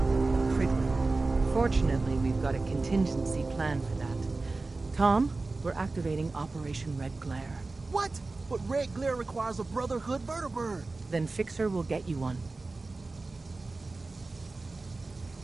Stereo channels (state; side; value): quieter; left; 3.5 dB